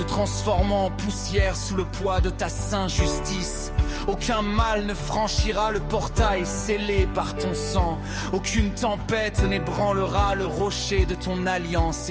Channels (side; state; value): both; identical; correlation 1.00